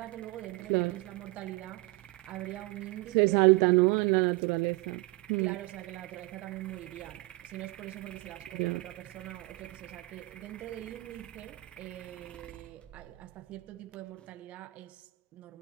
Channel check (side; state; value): left; quieter; 22.6 dB